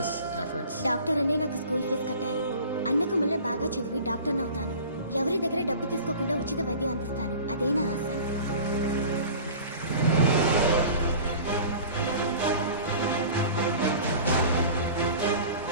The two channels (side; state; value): both; inverted; correlation -0.41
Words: efforts. Doctor అనే నాకు స్కూల్ ఫీజు కట్టారు. అన్నకు మళ్ళీ బాగా చదివి డాక్టర్ అవుతాను. ఎవరి దగ్గర డబ్బు తీసుకోకుండా ఉచిత వైద్యం అందిస్తాను. అదే నా ఆశ.